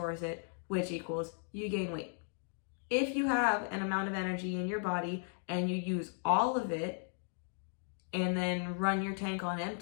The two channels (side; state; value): right; silent; digital silence